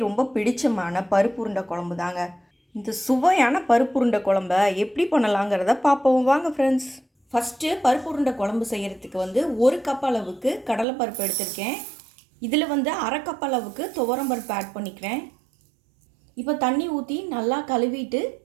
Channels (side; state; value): left; drops out; at 10.9 s